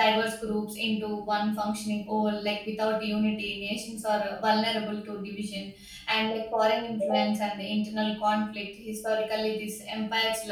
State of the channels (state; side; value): identical; both; correlation 1.00